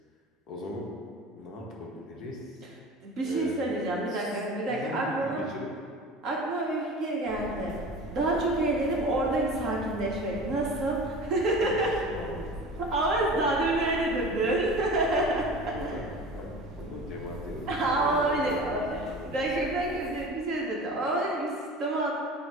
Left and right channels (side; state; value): both; normal; correlation 0.37